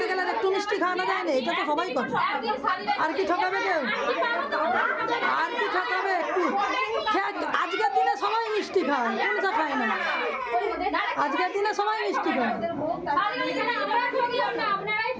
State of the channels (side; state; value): both; identical; correlation 1.00